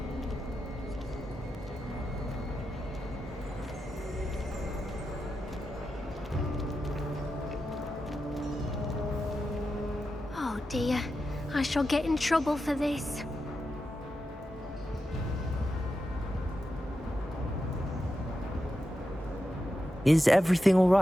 Oh dear, I shall get in trouble for this. Is everything all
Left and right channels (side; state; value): both; normal; correlation 0.89